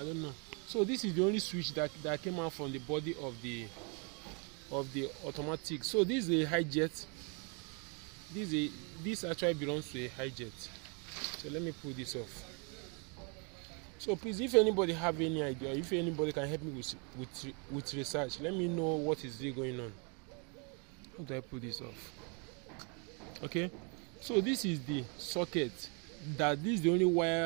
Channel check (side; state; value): left; quieter; 35.3 dB